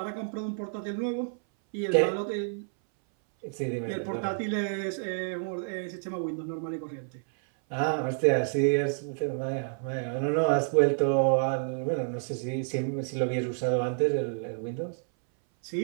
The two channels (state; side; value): silent; left; 58 dB below the other